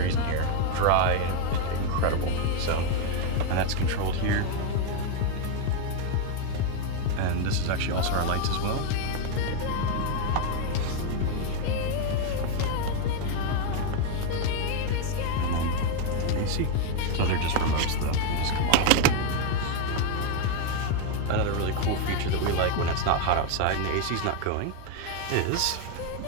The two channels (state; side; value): different; both; correlation 0.01